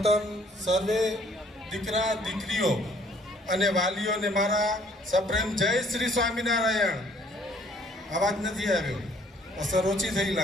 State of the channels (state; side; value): normal; both; correlation 0.60